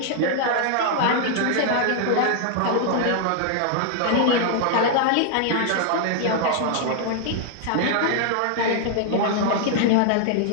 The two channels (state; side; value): different; both; correlation 0.00